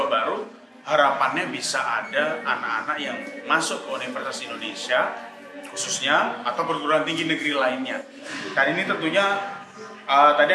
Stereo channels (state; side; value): identical; both; correlation 1.00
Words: baru. Harapannya bisa ada anak-anak yang masuk ke Universitas Indonesia khususnya atau perguruan tinggi negeri lainnya. Dan ini tentunya tadi